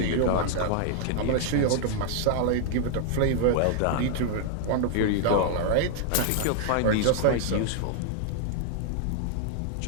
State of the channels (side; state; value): both; different; correlation 0.00